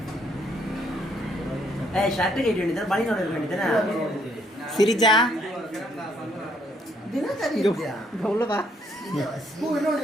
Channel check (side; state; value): both; normal; correlation 0.69